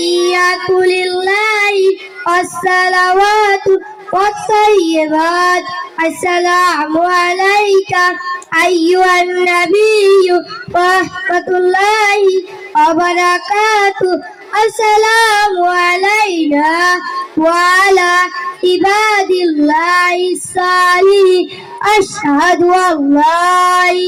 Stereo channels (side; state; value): both; identical; correlation 1.00